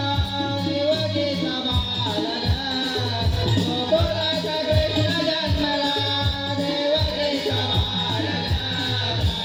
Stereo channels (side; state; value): both; identical; correlation 1.00